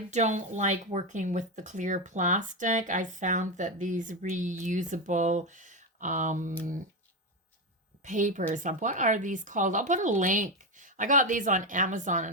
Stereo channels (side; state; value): both; normal; correlation 0.12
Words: don't like working with the clear plastic. I found that these reusable papers, what are these called? I'll put a link. I got these on Amazon,